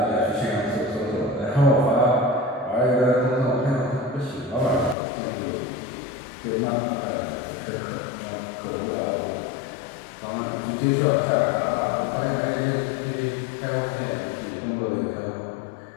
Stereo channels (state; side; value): drops out; right; at 5.0 s